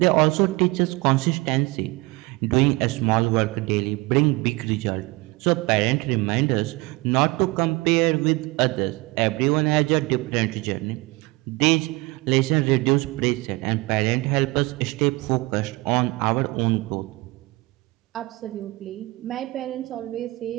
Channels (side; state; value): left; quieter; 23.2 dB